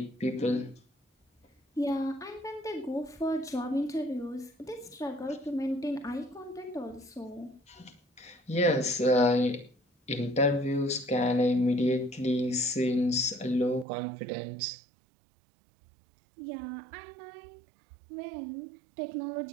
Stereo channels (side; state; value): left; drops out; at 13.9 s